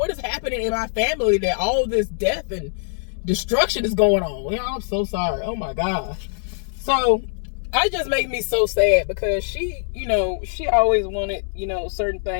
is happening in my family that all this death and destruction is going on? Y'all, I'm so sorry. Oh my gosh. So it just makes me so sad, because she, you know, she always wanted, you know, certain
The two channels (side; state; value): right; silent; 64 dB below the other